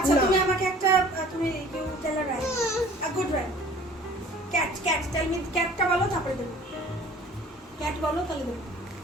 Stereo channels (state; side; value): normal; both; correlation 0.49